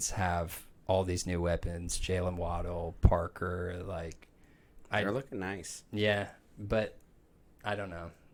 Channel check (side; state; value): both; identical; correlation 1.00